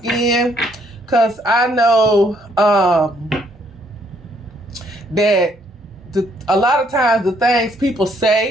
because I know that a lot of times the things people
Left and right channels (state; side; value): normal; both; correlation 0.68